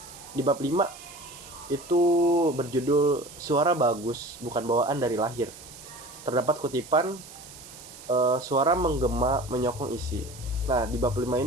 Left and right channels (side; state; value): right; noise; hiss, 17 dB below the sound